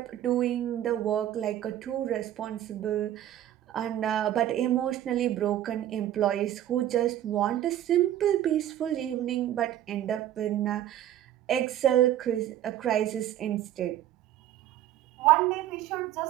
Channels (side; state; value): left; quieter; 12.2 dB